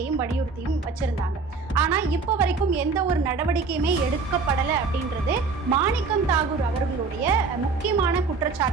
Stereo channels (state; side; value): quieter; left; 4.5 dB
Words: வலியுறுத்தியும் வச்சிருந்தாங்க. ஆனா இப்ப வரைக்கும் எந்த ஒரு நடவடிக்கையுமே எடுக்கப்படலை அப்படின்றது மாணிக்கம் தாகூர் அவர்களுடைய முக்கியமான